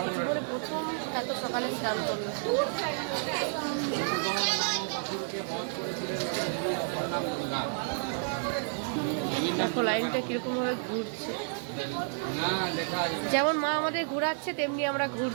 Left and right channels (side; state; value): left; silent; digital silence